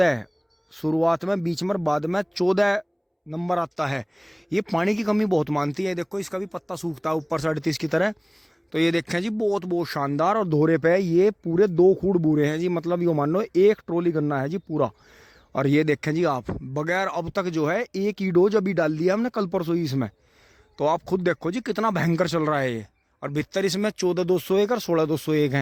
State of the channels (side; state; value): both; identical; correlation 1.00